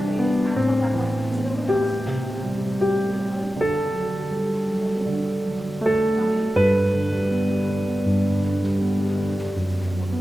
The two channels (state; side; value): normal; both; correlation 0.94